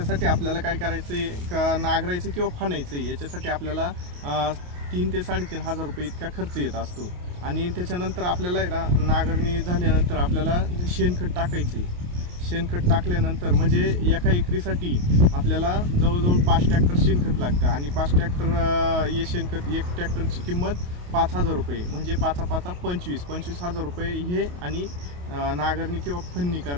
आपल्याला काय करायचं आहे का, नांगरायचं किंवा फणायचं आहे याच्यासाठी आपल्याला 3 ते 3.5 हजार रुपये इतका खर्च येत असतो। आणि त्याच्यानंतर आपल्याला नांगरणी झाल्यानंतर आपल्याला शेणखत टाकायचं आहे। शेणखत टाकल्यानंतर म्हणजे एका एकरीसाठी आपल्याला जवळजवळ 5 ट्रॅक्टर शेणखत लागतं आणि 5 ट्रॅक्टर हे शेणखत, एक ट्रॅक्टरची किंमत 5,000 रुपये, म्हणजे 5 25 हजार रुपये हे। आणि नांगरणी किंवा फन्नी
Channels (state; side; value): late; left; 28 ms